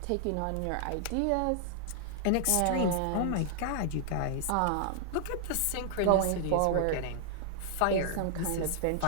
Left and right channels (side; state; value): both; different; correlation 0.00